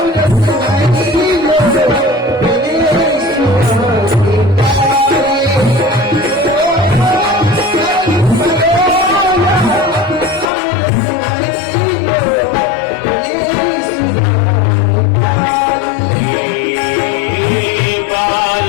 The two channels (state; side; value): drops out; right; at 10.5 s